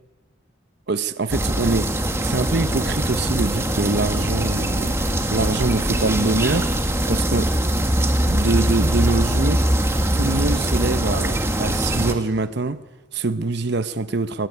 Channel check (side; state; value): both; normal; correlation 0.65